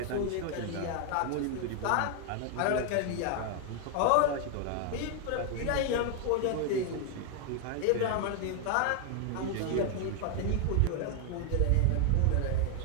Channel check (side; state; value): both; different; correlation 0.00